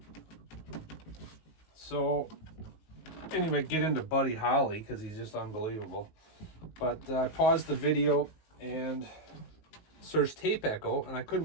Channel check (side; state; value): right; late; 19 ms